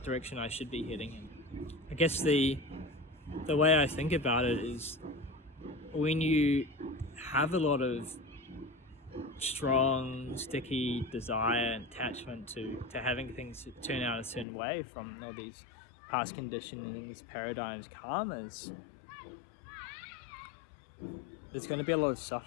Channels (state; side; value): drops out; right; at 14.5 s